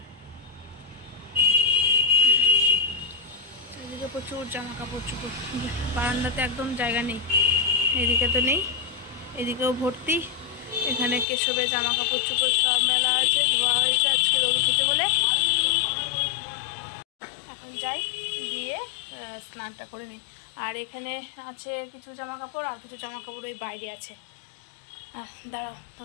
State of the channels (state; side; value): drops out; right; at 11.2 s